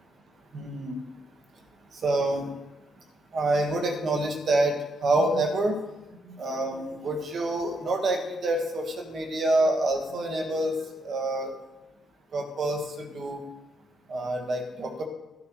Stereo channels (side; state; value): both; normal; correlation 0.78